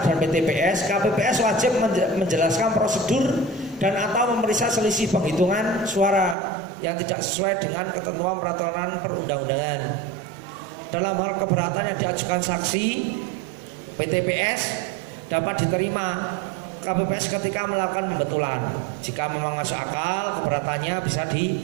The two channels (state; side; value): drops out; left; at 6.4 s